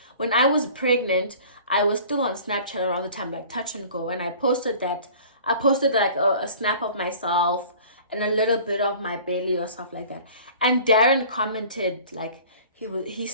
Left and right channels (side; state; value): both; inverted; correlation -0.45